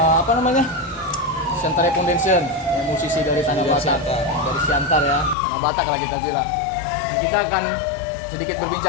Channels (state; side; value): drops out; right; at 5.4 s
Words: Apa namanya? Siantare Foundation, ya, musisi dari Tanah Batak, dari Siantar ya, Tanah Batak lah kita bilang. Dan kita akan sedikit